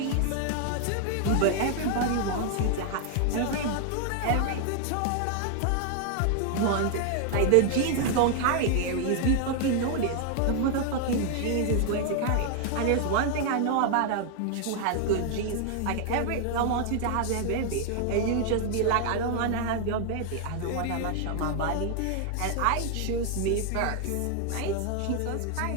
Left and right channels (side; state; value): both; different; correlation 0.00